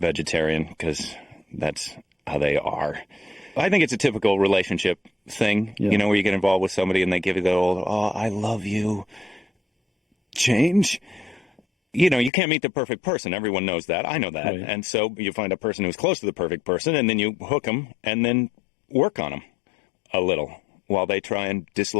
because that's how they are. I think it's a typical relationship thing, you know, where you get involved with somebody and they give you the old, oh, I love you, change. You know, you can't meet the perfect person. Everyone knows that. I know that. Right. And so you find a person who's close to the perfect person and then you hook them and then work on them a little while they try and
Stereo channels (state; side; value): drops out; right; at 12.3 s